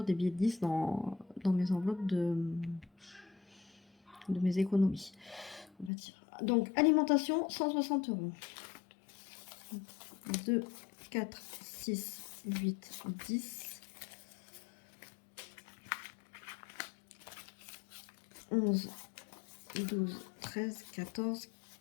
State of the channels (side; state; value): right; drops out; at 5.9 s